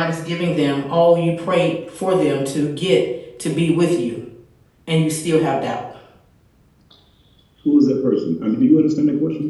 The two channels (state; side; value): identical; both; correlation 1.00